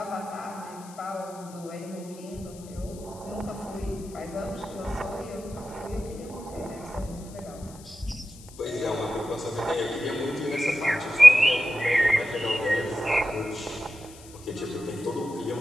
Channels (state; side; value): noise; left; hiss, 20 dB below the sound